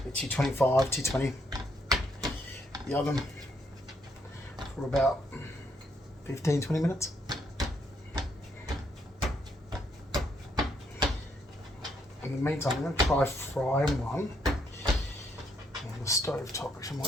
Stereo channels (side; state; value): both; normal; correlation 0.74